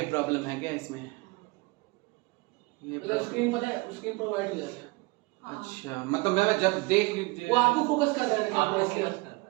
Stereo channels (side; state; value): left; quieter; 24.9 dB